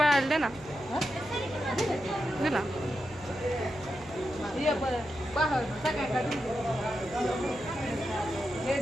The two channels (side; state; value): right; noise; hum, 21 dB below the sound